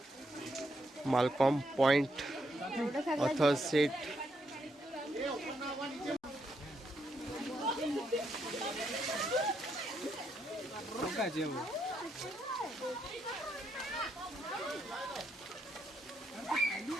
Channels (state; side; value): normal; both; correlation 0.77